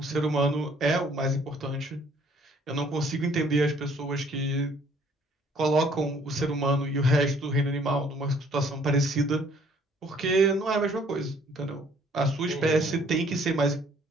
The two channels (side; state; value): both; normal; correlation 0.60